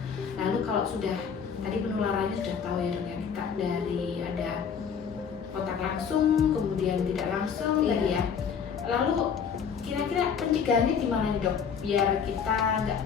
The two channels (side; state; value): right; quieter; 6.9 dB